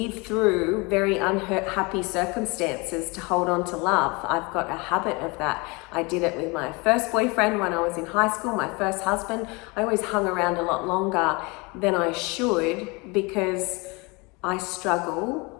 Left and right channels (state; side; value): quieter; right; 27.3 dB